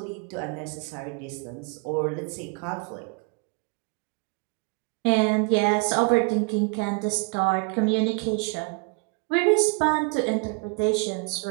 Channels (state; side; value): quieter; left; 33.5 dB